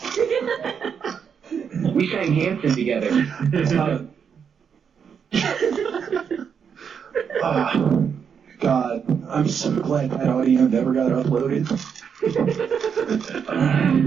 We sang Hanson together. God, I'm so glad that audio never got uploaded.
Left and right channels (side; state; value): left; quieter; 7.1 dB